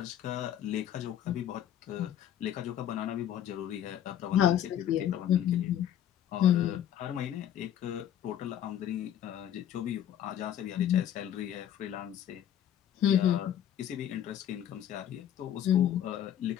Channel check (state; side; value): quieter; right; 10.5 dB